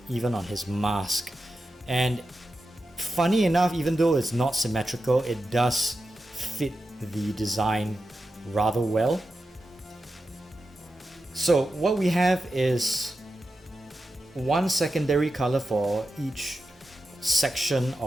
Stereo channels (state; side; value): normal; both; correlation 0.90